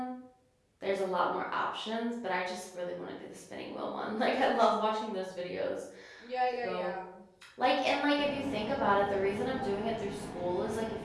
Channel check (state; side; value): identical; both; correlation 1.00